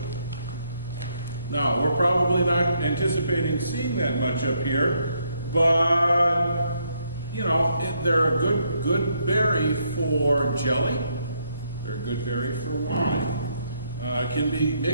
Now, we're probably not anticipating seeing that much up here, but, they're a good berry for jelly. They're a good berry for wine. Can be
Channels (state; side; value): inverted; both; correlation -0.74